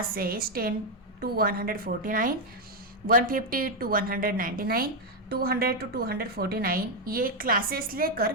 10 to 149, 150 to 199, 200 to 249 ये क्लासेस लेकर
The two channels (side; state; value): both; normal; correlation 0.02